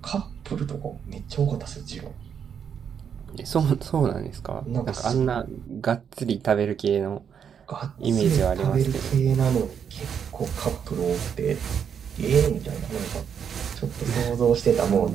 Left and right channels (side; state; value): left; quieter; 7.7 dB